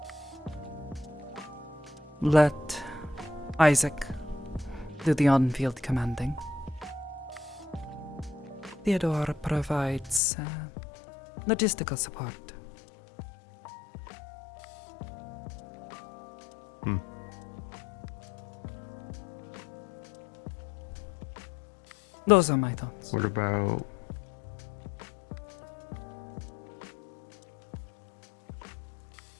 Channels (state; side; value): drops out; right; at 10.2 s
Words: Let Isaac do the on-field commanding. Theodore provides logistical support. Those are my thoughts. What about...